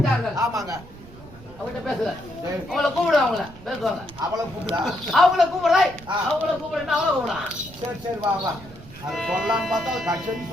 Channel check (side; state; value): right; noise; rumble, 19 dB below the sound